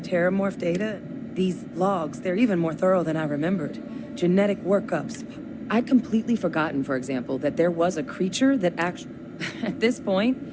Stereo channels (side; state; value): both; identical; correlation 1.00